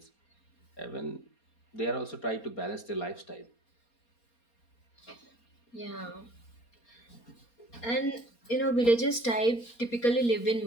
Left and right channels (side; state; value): right; late; 4.3 ms